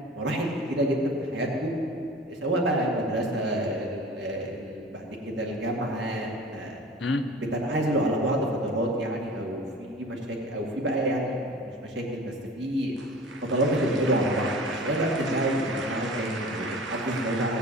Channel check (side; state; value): both; normal; correlation 0.40